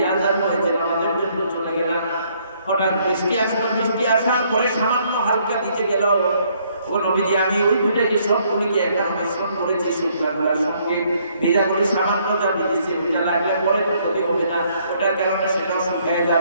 আযান হয়েছে নামাজের জন্য চলে গেলাম হঠাৎ বৃষ্টি আসার পরে সামান্য হালকা দিতে গেল ওগো নবীজি আমি ওই দুটোকে সবগুলিকে একবার মিশ্রণ করেছি শুকনা করার সঙ্গে ভেজা করে সামান্য যা দিয়েছি ওইটা লাগলে পরে তো ক্ষতি হবে না ওটার কারণে সেটাও শুকিয়ে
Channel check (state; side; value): inverted; both; correlation -0.67